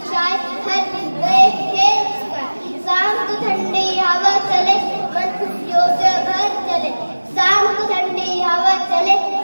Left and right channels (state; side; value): inverted; both; correlation -1.00